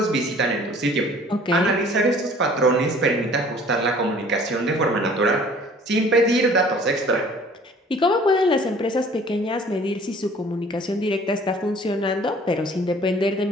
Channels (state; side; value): normal; both; correlation 0.52